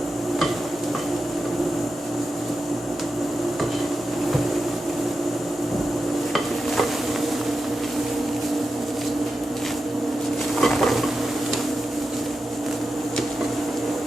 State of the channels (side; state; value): both; normal; correlation 0.90